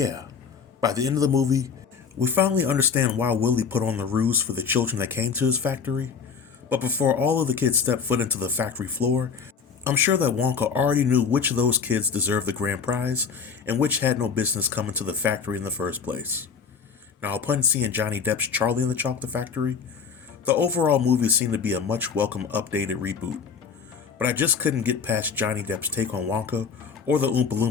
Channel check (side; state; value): right; quieter; 6.1 dB